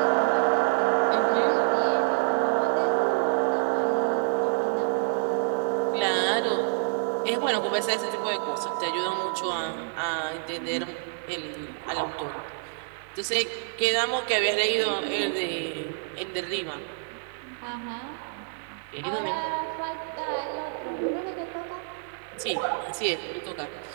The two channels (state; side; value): silent; left; digital silence